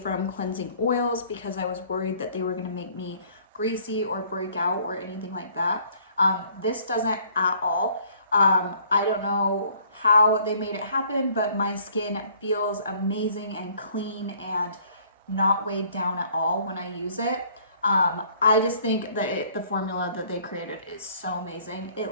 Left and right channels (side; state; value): both; inverted; correlation -0.58